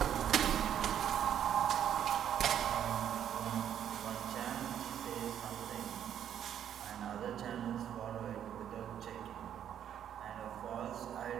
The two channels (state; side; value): quieter; left; 9.7 dB